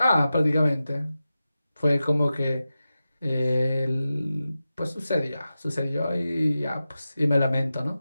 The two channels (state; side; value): inverted; both; correlation -0.93